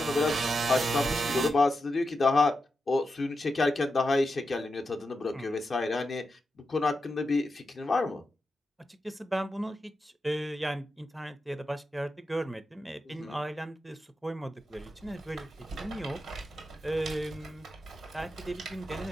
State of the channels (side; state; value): both; normal; correlation 0.88